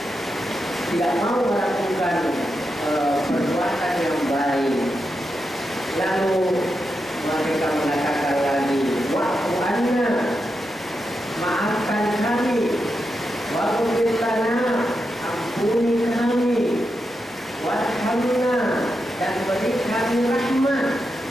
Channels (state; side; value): normal; both; correlation 0.87